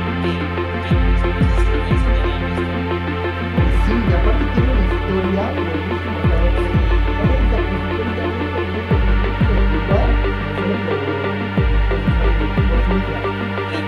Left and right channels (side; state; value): both; identical; correlation 1.00